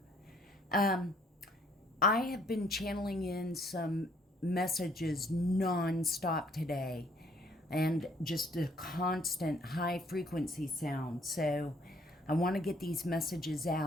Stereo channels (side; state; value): both; normal; correlation 0.63